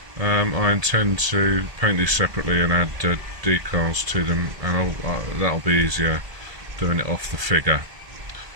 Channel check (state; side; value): late; left; 1.7 ms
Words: I intend to paint these separately and add decals to them, and that'll be easier doing it off the figure.